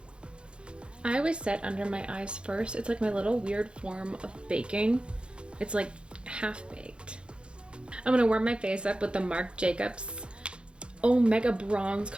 I always set under my eyes first. It's like my little weird form of baking. It's like half baked. I'm going to warm my face up with the Marc Jacobs Omega Bronze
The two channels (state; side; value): late; left; 0.055 ms